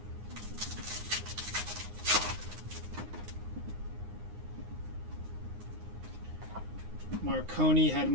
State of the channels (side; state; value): left; late; 9.7 ms